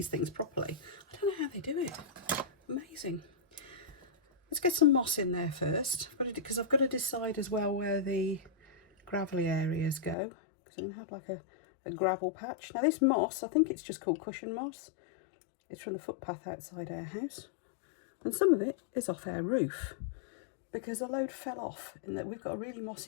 things properly, I don't know how they do it. Amazing. Let's get some moss in there first, because I've got to decide as well where the gravelly areas go, because I'm going to have like a gravel patch. Now this moss, I think it's just called cushion moss. It's from the footpath outside our house, and some of it is off our roof because a load fell off, and that we've got a really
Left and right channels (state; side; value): drops out; right; at 10.2 s